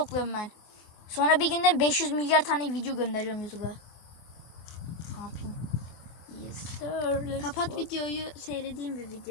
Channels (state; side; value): late; right; 24 ms